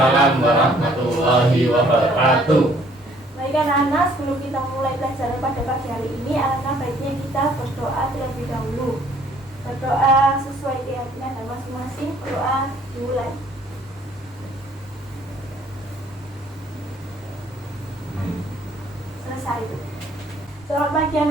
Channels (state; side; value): normal; both; correlation 0.60